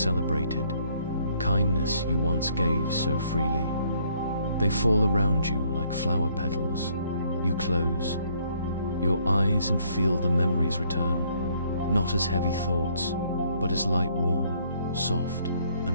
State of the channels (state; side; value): inverted; both; correlation -0.65